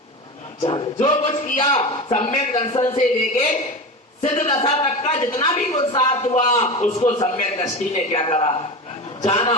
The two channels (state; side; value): normal; both; correlation 0.25